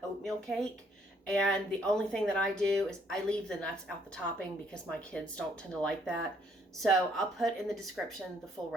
oatmeal cake, and the only thing that I do is I leave the nuts out the topping because my kids don't tend to like that. So I'll put in the description the full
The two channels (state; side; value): normal; both; correlation 0.67